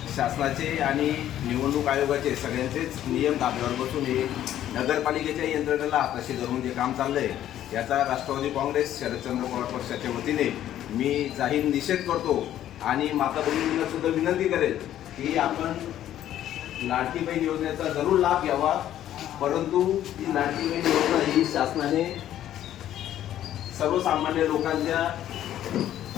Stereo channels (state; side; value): quieter; right; 11.9 dB